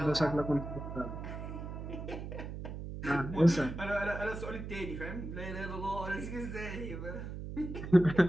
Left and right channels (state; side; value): noise; right; hum, 7 dB below the sound